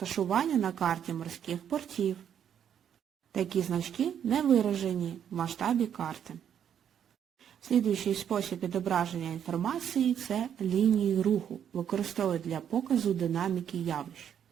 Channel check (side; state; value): left; quieter; 9.0 dB